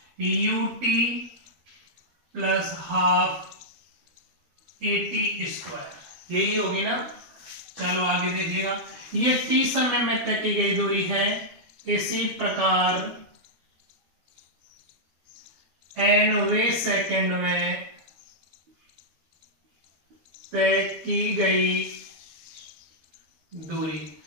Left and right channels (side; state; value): left; late; 13 ms